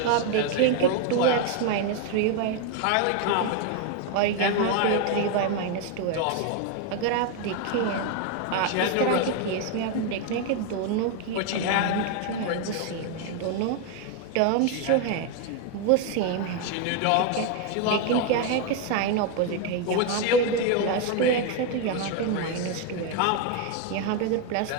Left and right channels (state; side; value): different; both; correlation 0.01